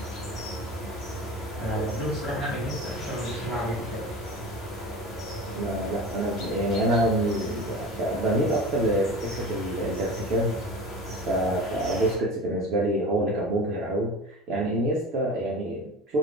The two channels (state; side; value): normal; both; correlation 0.34